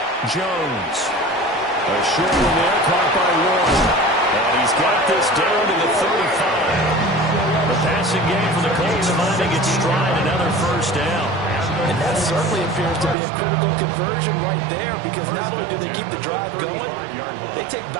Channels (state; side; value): drops out; left; at 13.2 s